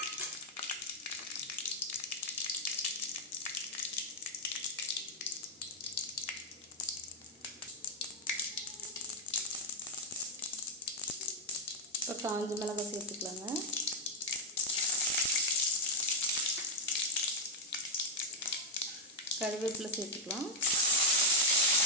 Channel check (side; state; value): both; normal; correlation 0.00